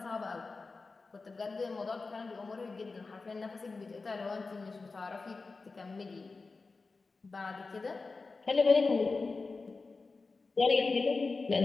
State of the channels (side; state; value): right; quieter; 4.0 dB